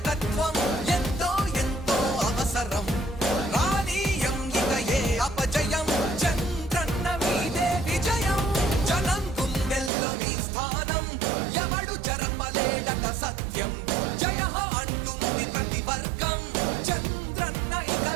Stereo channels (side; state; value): left; drops out; at 9.9 s